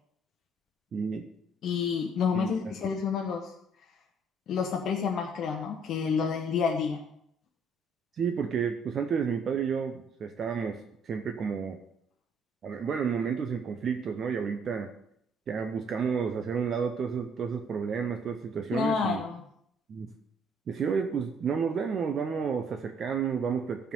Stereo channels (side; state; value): both; normal; correlation 0.63